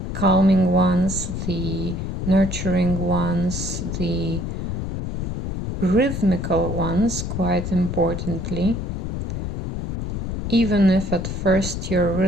calming ones, the nurturing ones, the rhythmical ones, quite importantly, even if at first your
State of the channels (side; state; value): left; noise; rumble, 3 dB below the sound